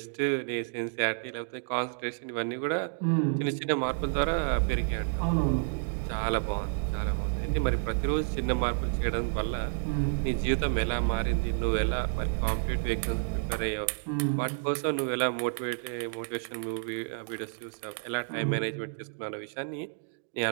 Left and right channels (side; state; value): left; silent; digital silence